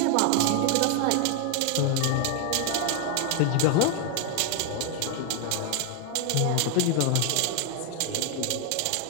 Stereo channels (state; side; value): different; both; correlation 0.00